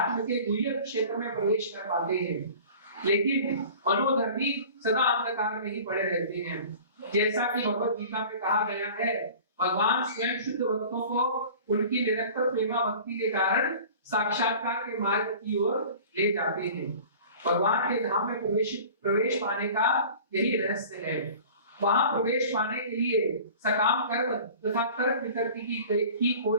के गुह्य क्षेत्र में प्रवेश कर पाते हैं। लेकिन मनोधर्मी सदा अंधकार में ही पड़े रहते हैं। जैसा कि भगवत गीता में कहा गया है, भगवान स्वयं शुद्ध भक्तों को उनकी निरंतर प्रेमा भक्ति के कारण साक्षात्कार के मार्ग की ओर ले जाते हैं। भगवान के धाम में प्रवेश पाने का यही रहस्य है। वहां प्रवेश पाने के लिए सकाम कर्म तथा तर्क वितर्क की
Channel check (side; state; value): both; inverted; correlation -0.43